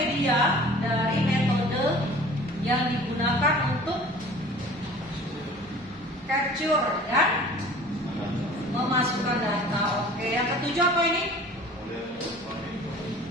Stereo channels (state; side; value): normal; both; correlation 0.46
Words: dari metode yang digunakan untuk capture dan memasukkan data. Oke, yang ketujuh apa ini?